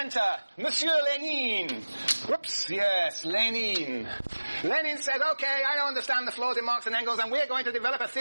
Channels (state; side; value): inverted; both; correlation -1.00